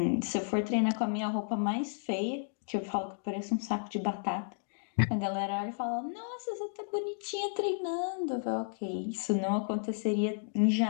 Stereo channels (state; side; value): silent; right; digital silence